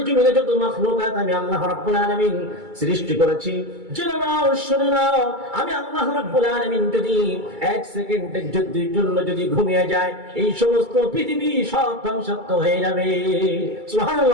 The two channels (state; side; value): late; left; 2.3 ms